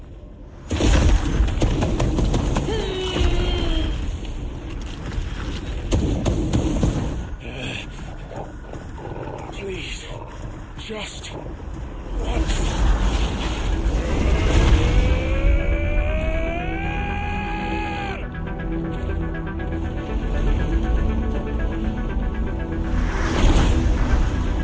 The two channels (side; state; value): both; identical; correlation 1.00